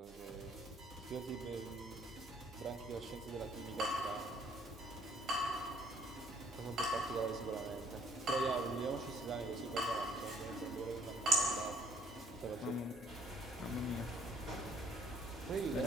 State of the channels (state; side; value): normal; both; correlation 0.62